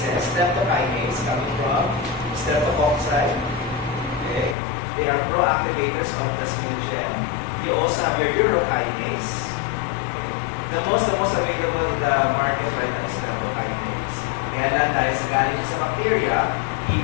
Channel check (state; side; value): drops out; right; at 4.5 s